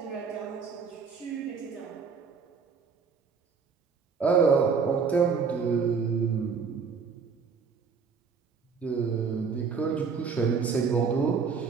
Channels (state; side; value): quieter; left; 5.7 dB